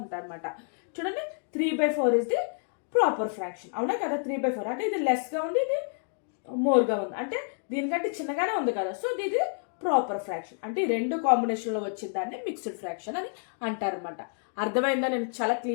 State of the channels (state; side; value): silent; right; 59 dB below the other